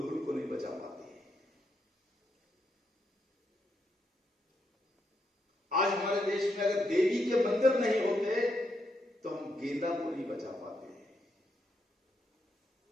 को नहीं बचा पाते। आज हमारे देश में अगर देवी के मंदिर नहीं होते तो हम गेंदा को नहीं बचा पाते,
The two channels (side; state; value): both; normal; correlation 0.80